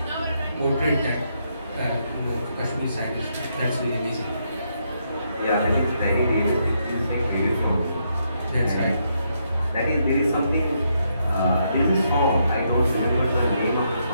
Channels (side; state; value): both; inverted; correlation -0.77